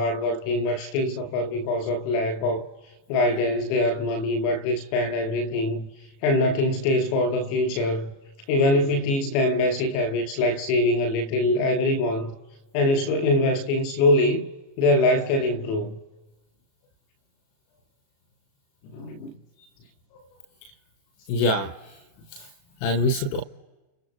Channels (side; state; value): right; late; 36 ms